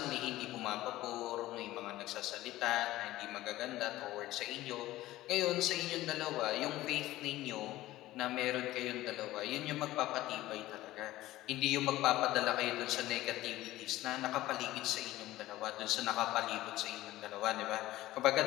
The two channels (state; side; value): quieter; right; 16.2 dB